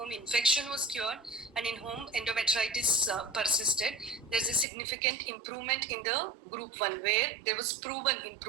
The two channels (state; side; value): drops out; left; at 4.7 s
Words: infection was cured and in whom endometritis persisted, there's a significant improvement in the group 1, where there was proven